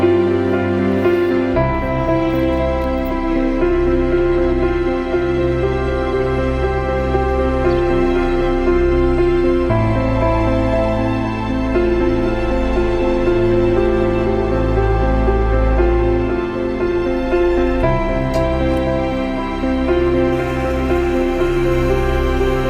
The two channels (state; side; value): identical; both; correlation 1.00